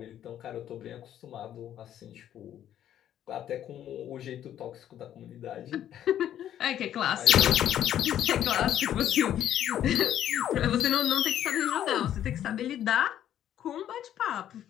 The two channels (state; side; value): quieter; right; 10.9 dB